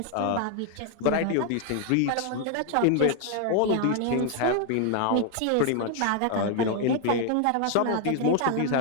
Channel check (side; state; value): both; different; correlation 0.00